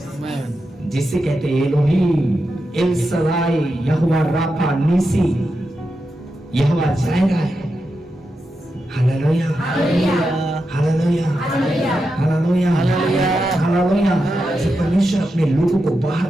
जिसे कहते हैं एलोहीम, एल सदाई, यहोवा राफा, नीसी, यहोवा जायरा है। Hallelujah, hallelujah, hallelujah, hallelujah. जब परमेश्वर अपने लोगों को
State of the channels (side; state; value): both; normal; correlation 0.88